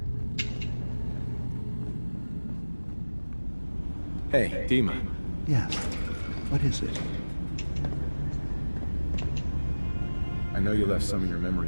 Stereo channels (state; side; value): inverted; both; correlation -1.00